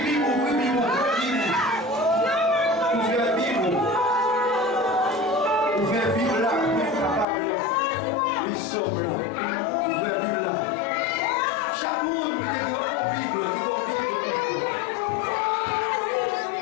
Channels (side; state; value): right; drops out; at 7.2 s